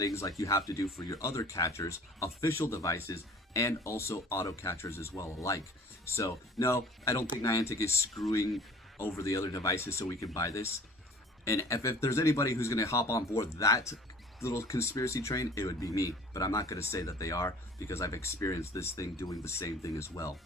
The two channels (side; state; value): both; normal; correlation 0.48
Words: like you have to do for your other catchers, official devices, and also auto catchers as well alike. So no, I don't think Niantic is screwing over the other devices so we can buy this. And if there's anybody who's going to hop on board that little conspiracy train, it would be me. But I'm not going to say that they are because I've experienced this thing doing the same thing as well.